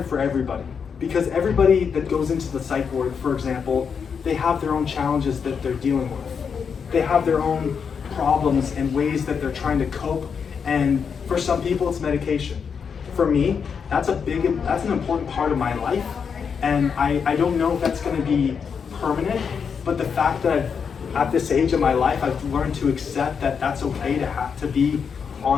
for everybody. Because everybody that goes into the psych ward, for example, they have their own challenges that they're dealing with. They have their own problems and ways that they're trying to cope. And for some people, it's medication. For me, that's an important part of my life. And I don't know if that's going to be permanent, but the fact that at this age of my life, I've learned to accept that that's okay to have to be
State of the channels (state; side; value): quieter; right; 6.4 dB